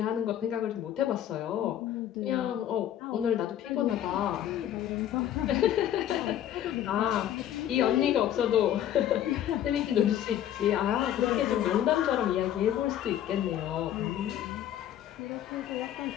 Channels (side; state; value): right; quieter; 11.2 dB